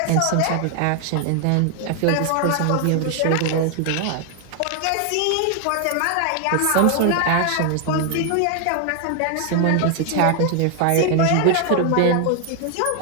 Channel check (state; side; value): different; both; correlation 0.00